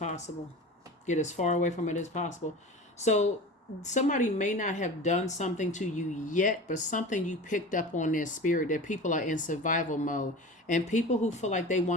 Get as far away from it as possible. So somebody may not have done something to you yet, but something you picked up on their spirit, that people are in survival mode. And people who feel like they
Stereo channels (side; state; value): both; normal; correlation 0.34